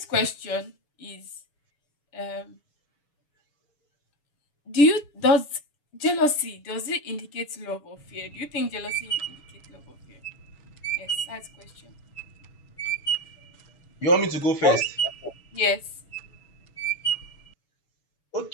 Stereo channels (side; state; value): right; late; 6.9 ms